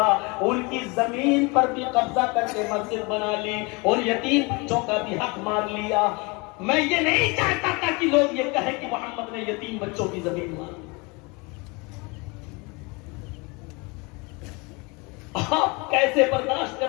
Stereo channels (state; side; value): quieter; right; 28.0 dB